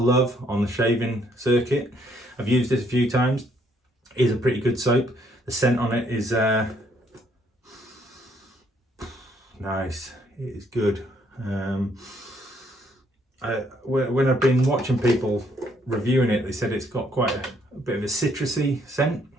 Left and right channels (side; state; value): both; normal; correlation 0.68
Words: on the shaving circuit. I've used this a few times. It is a pretty good soap. The scent on it is nice. It is good. When I've been watching people reviewing it, they said it's got quite a bit of a citrusy scent,